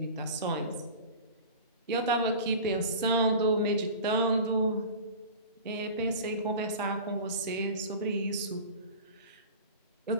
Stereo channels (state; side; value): inverted; both; correlation -0.36